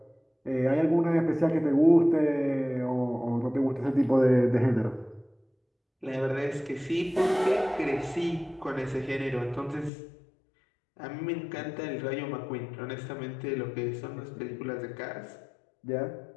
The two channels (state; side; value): drops out; right; at 9.9 s